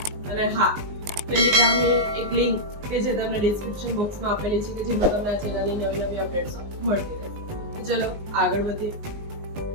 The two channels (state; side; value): late; left; 19 ms